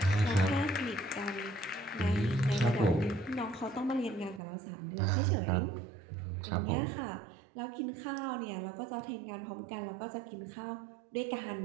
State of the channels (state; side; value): drops out; left; at 4.4 s